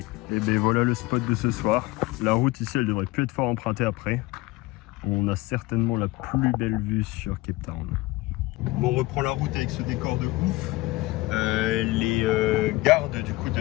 Et voilà le spot de ce soir. La route ici, elle devrait plus être fort empruntée après. On a certainement la plus belle vue sur Cape Town. Bon, on reprend la route avec ce décor de ouf. Les gardes du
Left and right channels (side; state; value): right; quieter; 20.2 dB